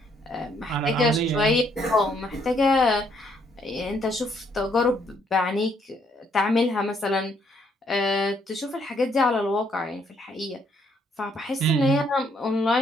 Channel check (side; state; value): both; normal; correlation 0.69